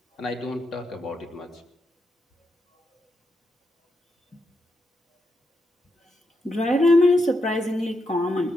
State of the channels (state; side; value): normal; both; correlation 0.83